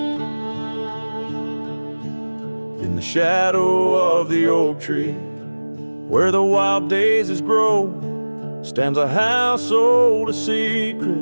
In the shadow of the oak tree, where the wild daisies grow, stands a house old of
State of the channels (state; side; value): inverted; both; correlation -1.00